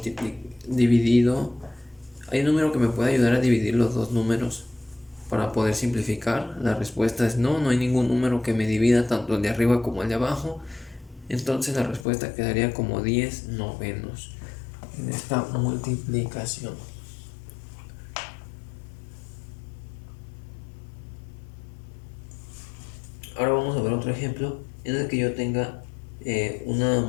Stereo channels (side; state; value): right; drops out; at 12.1 s